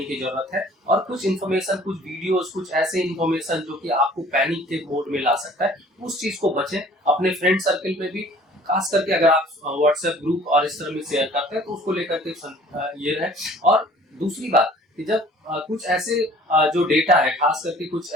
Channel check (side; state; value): both; normal; correlation 0.51